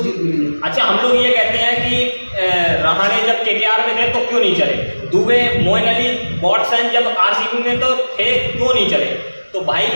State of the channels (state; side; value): inverted; both; correlation -1.00